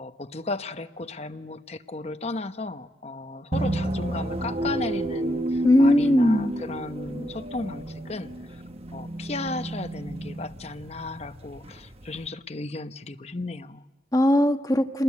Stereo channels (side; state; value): both; normal; correlation 0.80